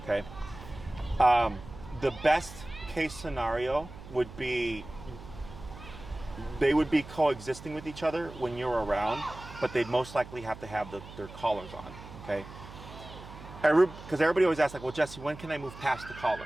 Okay. The best case scenario would be they would be coexisting with each other when you're around, but they'd most likely have to have their collars on. Okay. Because everybody always asks, like, well, Jesse, when can I move past the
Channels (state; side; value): noise; right; hum, 15 dB below the sound